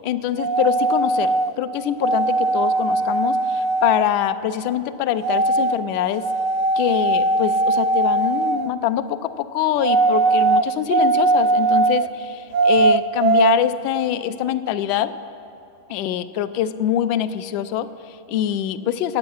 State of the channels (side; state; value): left; late; 11 ms